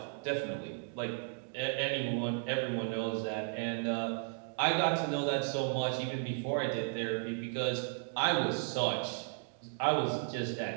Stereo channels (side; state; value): left; silent; digital silence